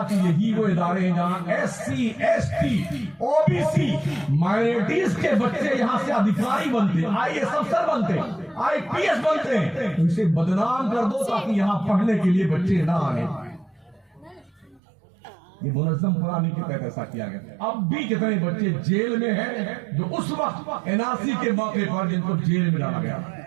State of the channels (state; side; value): drops out; left; at 14.8 s